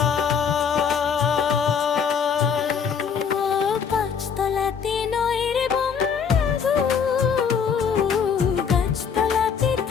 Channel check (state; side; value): quieter; right; 6.8 dB